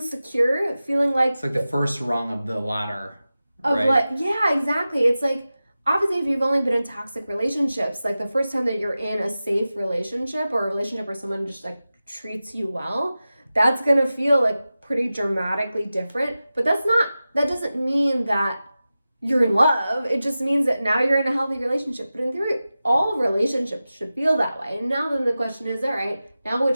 secure, feeling like it's like the first rung of the ladder. Of right? like, yeah, exactly. It's like, obviously, if you've only been in toxic relationships, like the first time that you're in a safe relationship or a relationship where someone just like treats you well, that's gonna feel like pretty dramatically different. But that doesn't mean that you're in love. It just means that now you're in a healthy relationship. But in theory, all relationships should feel that way. And now then the question is, all right, now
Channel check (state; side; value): inverted; both; correlation -0.94